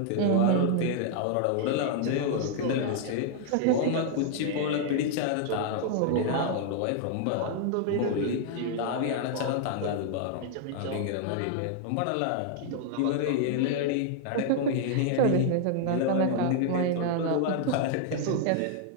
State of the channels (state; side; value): different; both; correlation 0.00